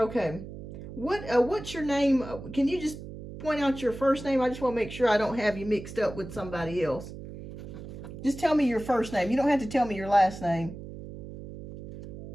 What's your name? Can you just point out your first name? I just want to make sure I don't have you mixed up with somebody else. Just tell me your first name. You don't have to tell me your last name.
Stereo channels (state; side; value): noise; right; hum, 12 dB below the sound